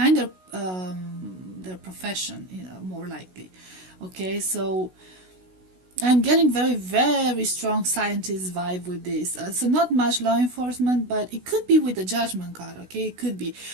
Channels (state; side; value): late; left; 16 ms